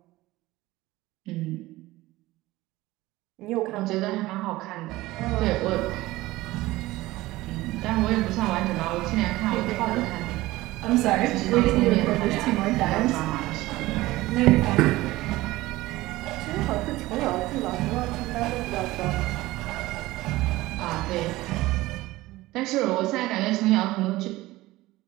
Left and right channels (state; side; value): quieter; left; 18.3 dB